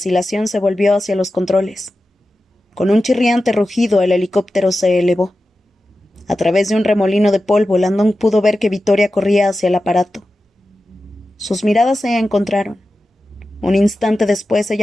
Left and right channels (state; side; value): normal; both; correlation 0.93